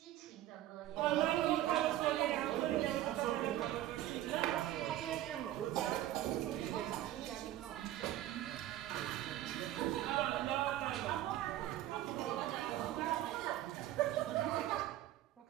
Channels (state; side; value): quieter; left; 13.7 dB